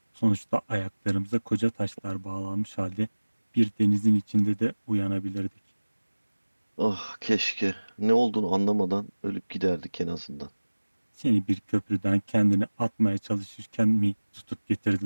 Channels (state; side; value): inverted; both; correlation -1.00